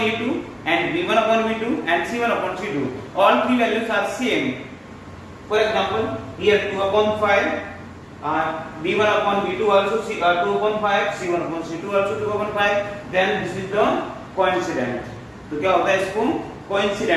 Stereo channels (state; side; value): identical; both; correlation 1.00